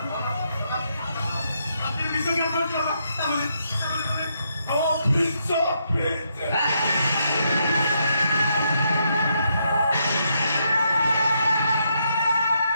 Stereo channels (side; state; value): both; inverted; correlation -0.77